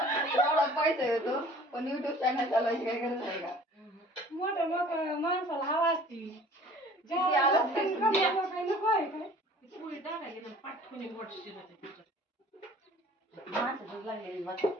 एवढा पैसा येतो पण युट्यूब चॅनल चालवायची काय गरज आहे का? मोठं मोठं माणसाला हवा असती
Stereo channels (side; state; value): both; normal; correlation 0.48